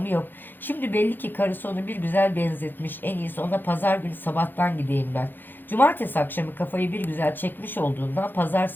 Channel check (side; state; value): right; late; 0.093 ms